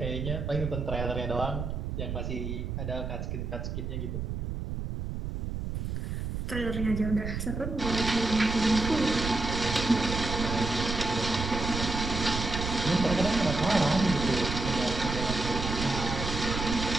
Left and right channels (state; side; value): noise; right; rumble, 3 dB below the sound